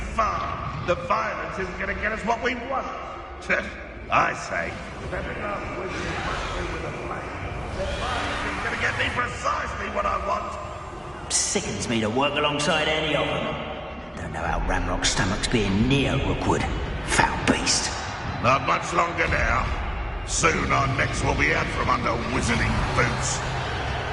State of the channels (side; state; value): both; identical; correlation 1.00